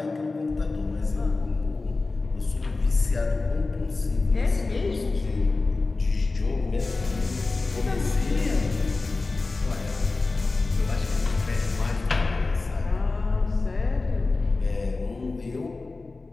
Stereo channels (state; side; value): quieter; right; 3.6 dB